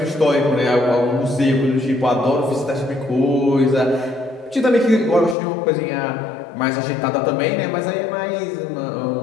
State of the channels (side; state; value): right; drops out; at 5.4 s